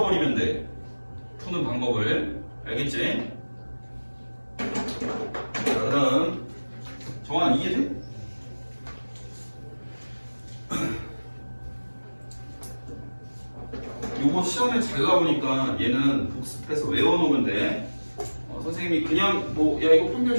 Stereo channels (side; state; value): both; inverted; correlation -1.00